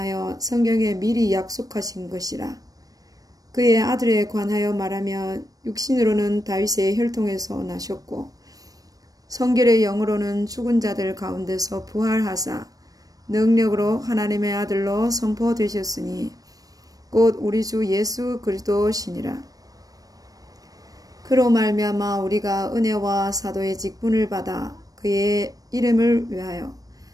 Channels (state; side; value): late; left; 0.18 ms